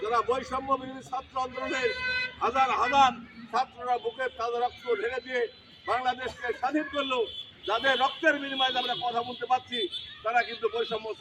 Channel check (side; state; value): both; identical; correlation 1.00